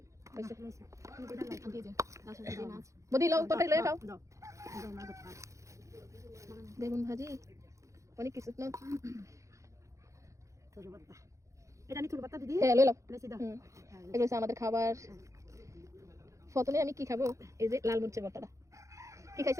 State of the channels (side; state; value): left; late; 0.15 ms